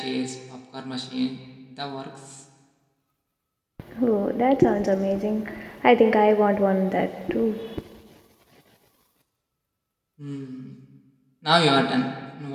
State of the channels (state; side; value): identical; both; correlation 1.00